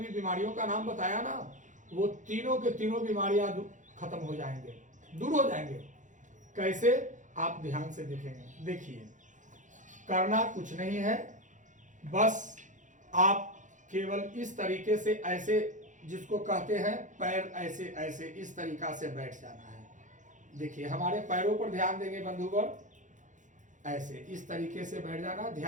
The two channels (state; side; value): late; left; 0.36 ms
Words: बीमारियों का नाम बताया ना, वो तीनों के तीनों बीमारियां खत्म हो जाएंगे, दूर हो जाएंगे। कैसे? आप ध्यान से देखेंगे। देखिए, करना कुछ नहीं है, बस आप केवल इस तरीके से, ऐसे जिसको कहते हैं पैर ऐसे ऐसे इस तरीका से बैठ जाना है। देखिए, हमारे पैरों पर ध्यान देंगे बंधुवर, ऐसे इस तरीके से बैठ जाना।